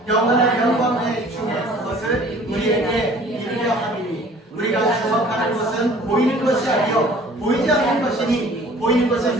영원한 영광의 중에 그것을 우리에게 이르려 함이니 우리가 주목하는 것은 보이는 것이 아니요 보이지 않는 것이니 보이는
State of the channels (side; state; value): both; normal; correlation 0.50